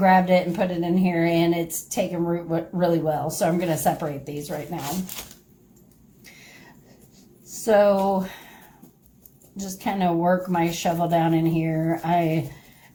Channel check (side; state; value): both; identical; correlation 1.00